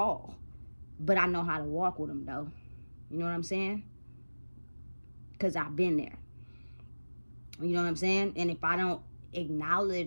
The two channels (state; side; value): inverted; both; correlation -1.00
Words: but I know how to walk with them though. You know what I'm saying? Because I've been there. You know what I'm saying? And if I don't